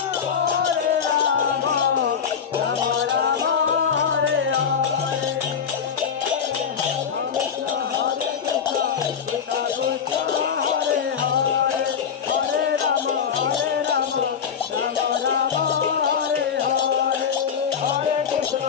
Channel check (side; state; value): right; quieter; 7.3 dB